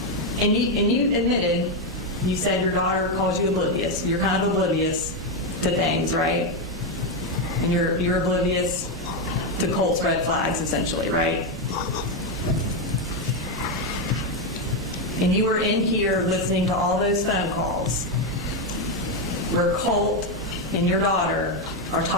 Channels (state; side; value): normal; both; correlation 0.06